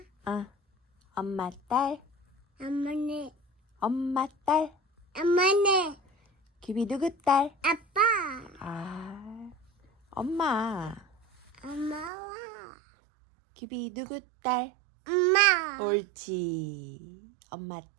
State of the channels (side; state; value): left; drops out; at 12.1 s